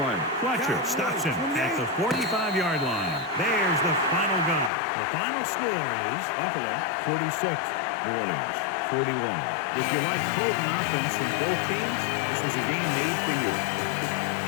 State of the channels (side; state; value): right; drops out; at 4.7 s